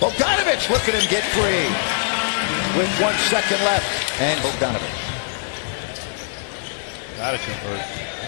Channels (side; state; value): right; silent; digital silence